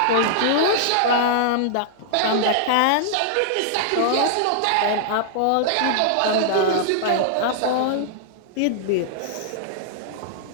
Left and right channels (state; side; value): different; both; correlation -0.01